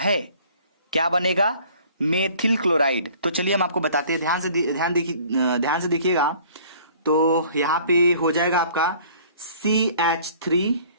क्या बनेगा? Methyl chloride. तो चलिए हम आपको बताते हैं, ध्यान से देखिएगा। तो यहां पे हो जाएगा आपका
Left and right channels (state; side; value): inverted; both; correlation -0.53